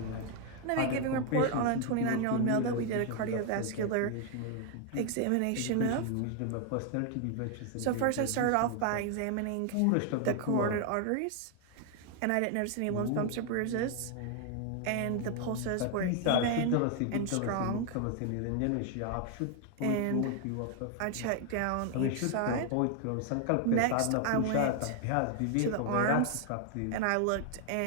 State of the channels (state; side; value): different; both; correlation 0.00